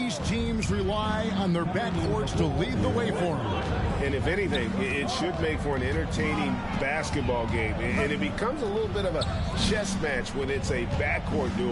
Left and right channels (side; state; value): both; identical; correlation 1.00